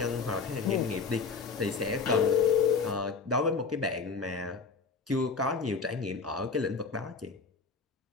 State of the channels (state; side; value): quieter; right; 4.9 dB